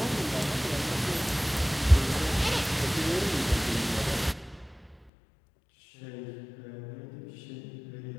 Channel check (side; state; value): right; drops out; at 5.1 s